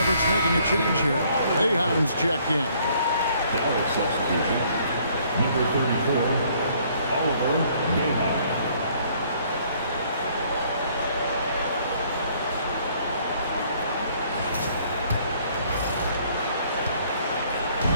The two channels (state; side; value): inverted; both; correlation -0.62